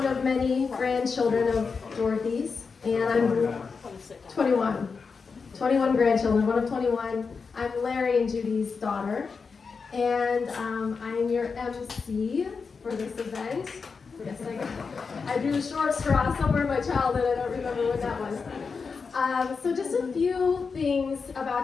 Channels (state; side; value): quieter; right; 5.1 dB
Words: of many grandchildren of Dorothy's, and I'm 21. 21 grandchildren, one of 21. I'm Larry and Judy's daughter, and I'm your MC for this event. Yes, I drew a short straw somewhere in my childhood. I don't remember when that was. So just a few things